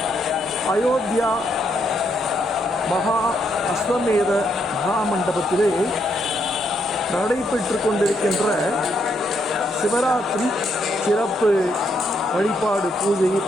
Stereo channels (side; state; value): both; normal; correlation 0.76